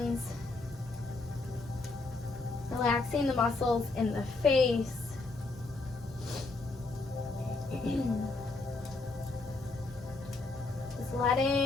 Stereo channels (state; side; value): quieter; right; 3.4 dB